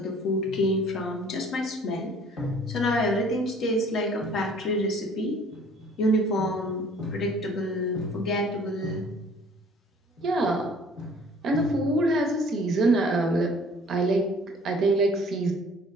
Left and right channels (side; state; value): both; normal; correlation 0.53